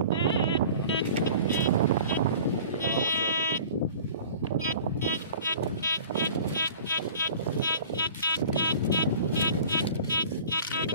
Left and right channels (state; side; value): inverted; both; correlation -0.43